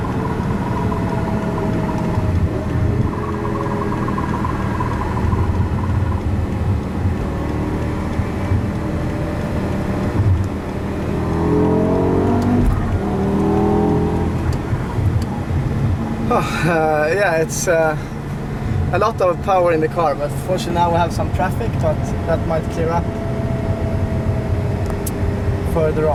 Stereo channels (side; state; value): both; identical; correlation 1.00